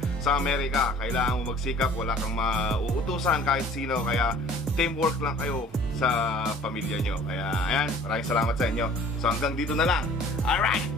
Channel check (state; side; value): normal; both; correlation 0.50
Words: sa Amerika. Kailangan mo magsikap, wala kang mauutusan kahit sino. Kaya teamwork lang kayo sa pamilya nyo. Kaya ayan, maraming salamat sa inyo. So hanggang dito na lang. Alright,